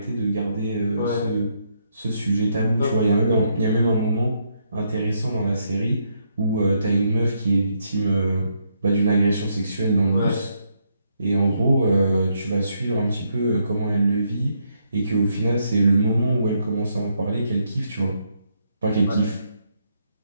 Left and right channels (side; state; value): both; inverted; correlation -0.76